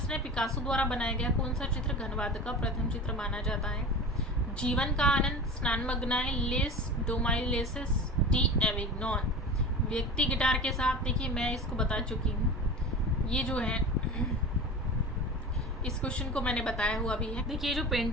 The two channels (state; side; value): normal; both; correlation 0.32